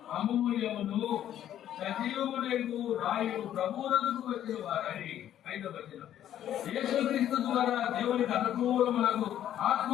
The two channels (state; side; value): quieter; right; 11.2 dB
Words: అమూల్యమును సజీవములకు రాయు ప్రభువులకు వచ్చిన వారని. 5వ వచనం, యేసుక్రీస్తు ద్వారా దేవునికి అనుకూలములకు ఆత్మ